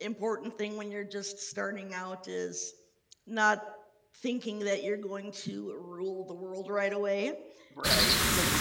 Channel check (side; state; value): both; identical; correlation 1.00